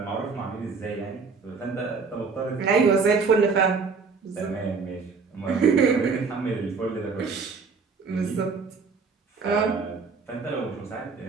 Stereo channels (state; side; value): quieter; left; 4.9 dB